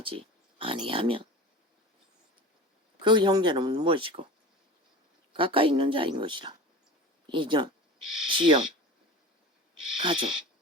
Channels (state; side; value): normal; both; correlation 0.34